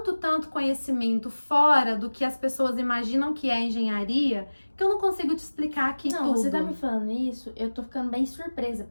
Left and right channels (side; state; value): both; inverted; correlation -1.00